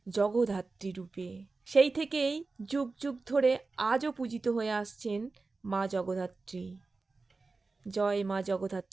জগদ্ধাত্রী রূপে। সেই থেকেই যুগ যুগ ধরে আজও পূজিত হয়ে আসছেন মা জগদ্ধাত্রী। জয় মা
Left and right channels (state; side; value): quieter; left; 3.8 dB